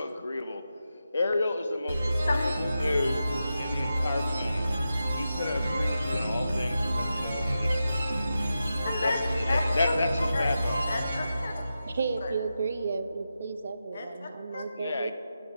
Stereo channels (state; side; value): inverted; both; correlation -0.90